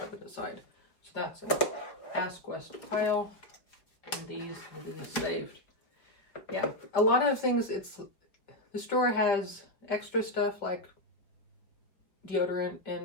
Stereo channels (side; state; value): right; late; 4.7 ms